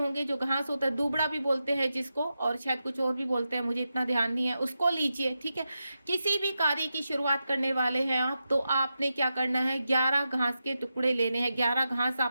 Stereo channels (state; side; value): inverted; both; correlation -0.89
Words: जो घास होता है दूबड़ा भी बोलते हैं जिसको, और शायद कुछ और भी बोलते हैं, मुझे इतना ध्यान नहीं है, उसको लीजिए, ठीक है। किसी भी कार्य की शुरुआत करने वाले हैं आप, तो आपने क्या करना है, 11 घास के टुकड़े लेने हैं, 11 घास